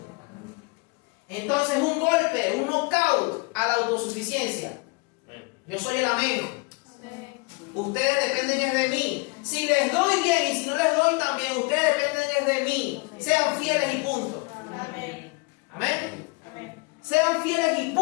Entonces un golpe, un knockout a la autosuficiencia. Yo soy el amén. Amén. Ustedes dependen de mí. Si les doy bien y si no les doy también, ustedes dependen de mí. Sean fieles y punto. Amén. Amén. Amén. Sean fieles y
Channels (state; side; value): quieter; right; 29.1 dB